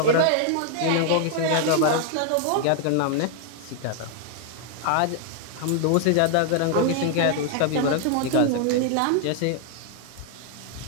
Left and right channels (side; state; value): both; different; correlation 0.00